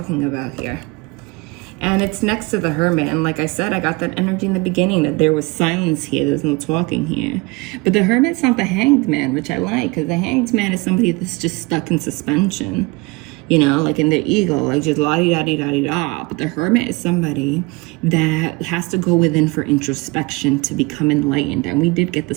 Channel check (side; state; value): left; quieter; 25.6 dB